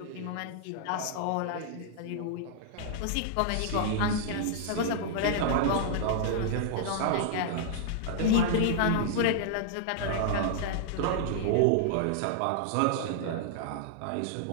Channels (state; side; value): different; both; correlation -0.01